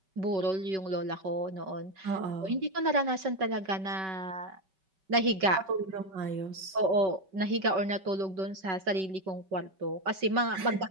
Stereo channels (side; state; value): left; late; 5.3 ms